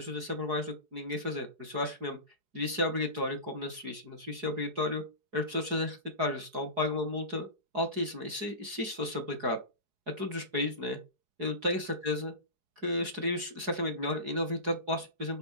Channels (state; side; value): late; left; 4.8 ms